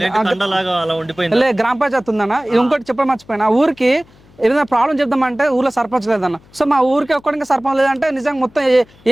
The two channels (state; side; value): noise; left; hum, 28 dB below the sound